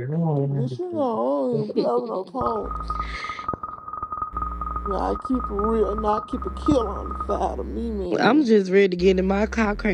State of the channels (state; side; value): identical; both; correlation 1.00